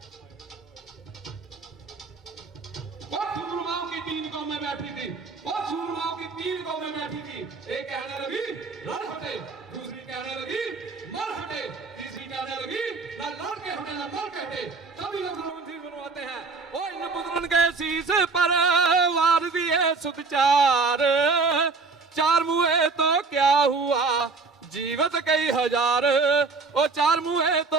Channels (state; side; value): quieter; left; 4.3 dB